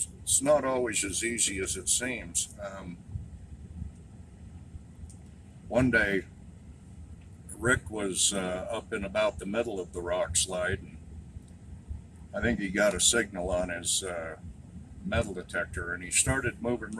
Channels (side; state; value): both; identical; correlation 1.00